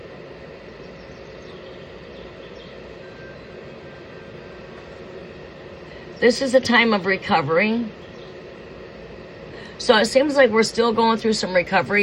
This is a time of recovery. So it seems like we're still going through some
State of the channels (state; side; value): identical; both; correlation 1.00